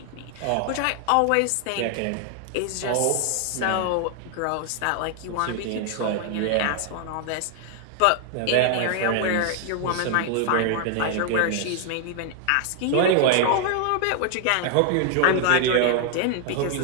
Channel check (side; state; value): both; different; correlation 0.00